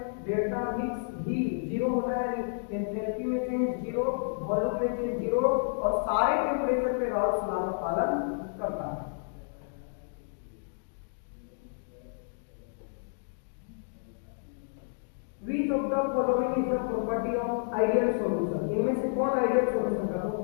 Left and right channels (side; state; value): right; silent; digital silence